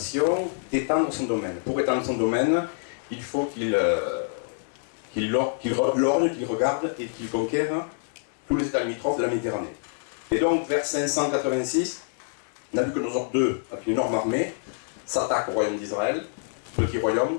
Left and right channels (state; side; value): silent; right; digital silence